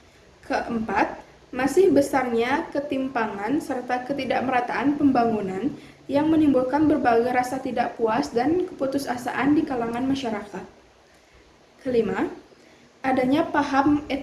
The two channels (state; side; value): identical; both; correlation 1.00